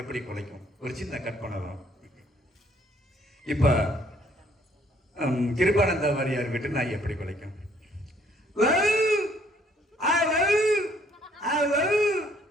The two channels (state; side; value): normal; both; correlation 0.64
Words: எப்படி குலைக்கும்? ஒரு சின்ன கட் பண்ணலாம். இப்ப கிருபானந்த வாரியார் வீட்டு நாய் எப்படி குலைக்கும்?